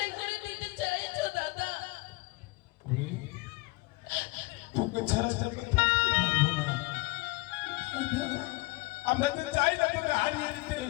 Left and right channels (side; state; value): right; quieter; 23.9 dB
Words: করে দিতে চাইছো দাদা? তোকে ছাড়া যাবে থাকতে পারবো না। আমরা তো চাই না তোকে হারিয়ে দিতে,